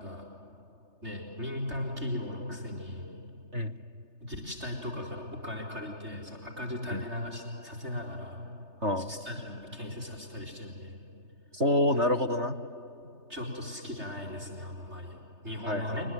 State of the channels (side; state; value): left; late; 3.3 ms